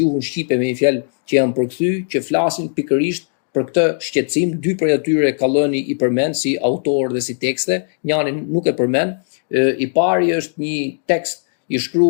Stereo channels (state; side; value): silent; right; digital silence